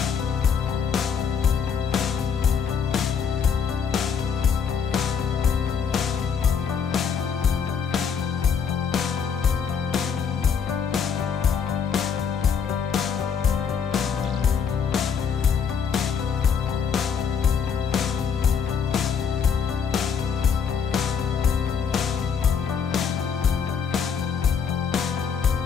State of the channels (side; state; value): right; quieter; 6.8 dB